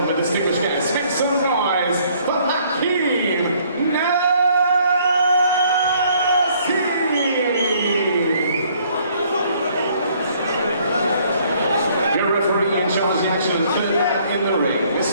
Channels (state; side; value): inverted; both; correlation -0.63